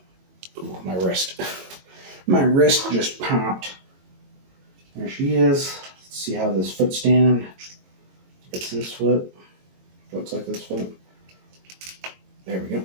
Ooh, my wrist. My wrist just popped. There she is. Let's see how this foot stand. It's this foot. Looks like this foot. There we go.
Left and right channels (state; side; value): late; left; 22 ms